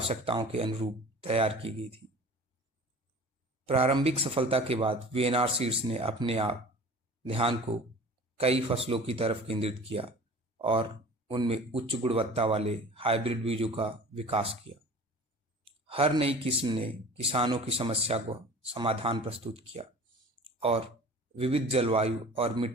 के अनुरूप तैयार की गई थी। प्रारंभिक सफलता के बाद वीएनआर सीड्स ने अपने आप ध्यान को कई फसलों की तरफ केंद्रित किया और उनमें उच्च गुणवत्ता वाले हाइब्रिड बीजों का विकास किया। हर नई किस्म ने किसानों की समस्या को समाधान प्रस्तुत किया और विविध जलवायु और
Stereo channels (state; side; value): normal; both; correlation 0.42